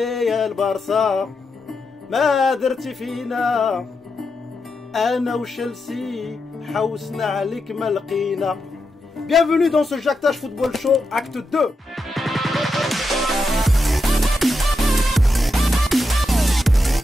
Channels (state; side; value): normal; both; correlation 0.86